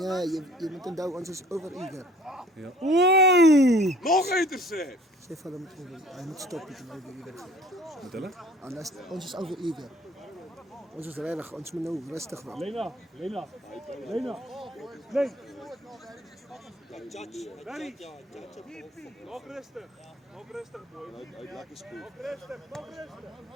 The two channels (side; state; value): both; normal; correlation 0.52